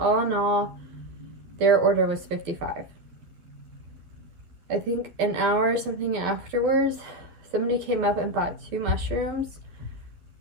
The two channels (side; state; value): left; late; 12 ms